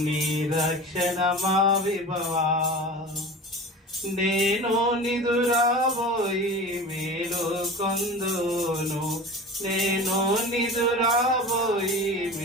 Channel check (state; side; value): normal; both; correlation 0.34